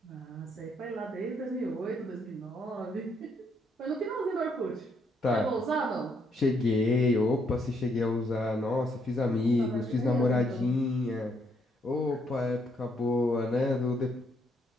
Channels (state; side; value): normal; both; correlation 0.73